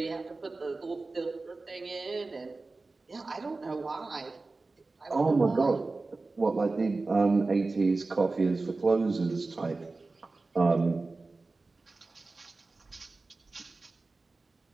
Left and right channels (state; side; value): quieter; left; 3.5 dB